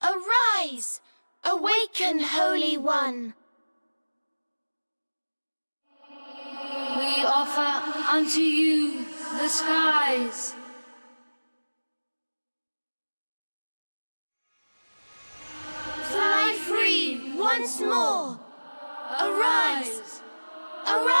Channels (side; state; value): both; inverted; correlation -1.00